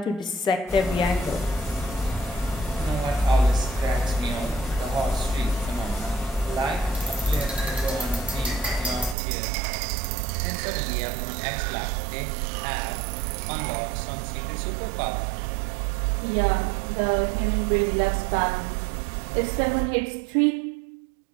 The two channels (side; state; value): left; drops out; at 9.2 s